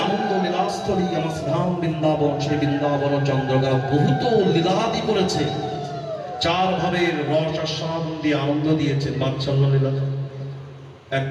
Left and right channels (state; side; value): identical; both; correlation 1.00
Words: আনন্দ লীলাস্থলী আমার ধাম বৃন্দাবন, সেই বৃন্দাবন চন্দ্রগা বহুত লীলাদি করেছে। চার ভাবের রস আস্বাদন দিয়ে আনন্দ দিয়েছেন বাৎসল্য লীলা 1